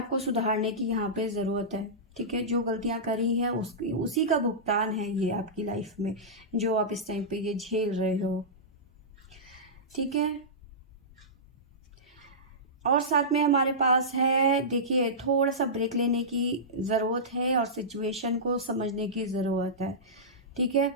को सुधारने की यहाँ पे ज़रूरत है। ठीक है, जो गलतियाँ करी है उसी का भुगतान है ये आपकी लाइफ में, जो आप इस टाइम पे ये झेल रहे हो। ठीक है, और साथ में हमारे पास है, देखिए थोड़ा सा ब्रेक लेने की ज़रूरत है और सिचुएशन को समझने की ज़रूरत है। ठीक है,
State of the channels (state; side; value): normal; both; correlation -0.16